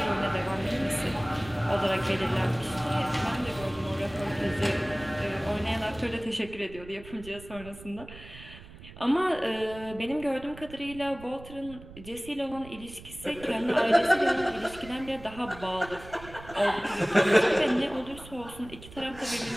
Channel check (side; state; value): right; noise; rumble, 17 dB below the sound